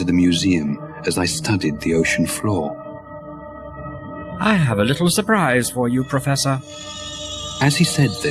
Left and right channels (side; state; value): both; identical; correlation 1.00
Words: the museum as I studied the ocean floor. I have a little surprise for you, Professor. As he said